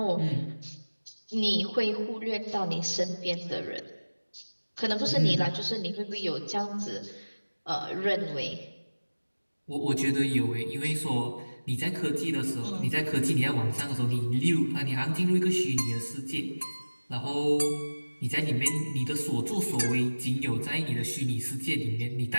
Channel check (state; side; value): inverted; both; correlation -1.00